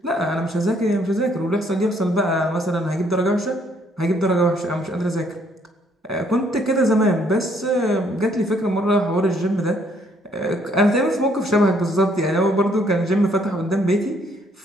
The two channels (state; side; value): normal; both; correlation 0.66